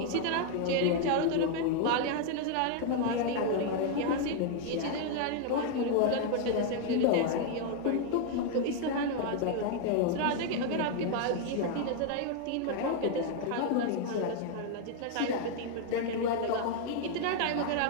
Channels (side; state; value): both; different; correlation 0.00